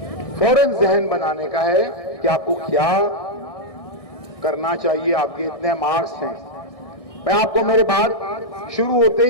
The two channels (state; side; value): late; right; 1.6 ms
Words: फौरन जहन बनाने का है कि आपको क्या करना चाहिए। आपके इतने मार्क्स हैं। मैं आपको मेरे बात शुरू होते